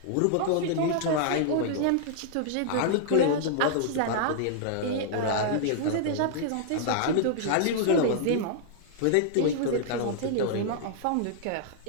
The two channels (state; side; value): different; both; correlation -0.01